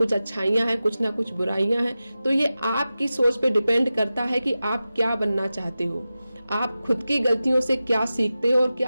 अच्छाइयां हैं, कुछ ना कुछ बुराइयां हैं। तो ये आपकी सोच पे डिपेंड करता है कि आप क्या बनना चाहते हो, आप खुद की गलतियों से क्या सीखते हो और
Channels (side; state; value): both; inverted; correlation -0.94